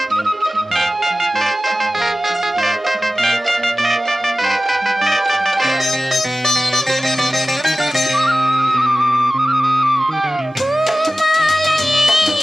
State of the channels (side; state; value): both; normal; correlation 0.96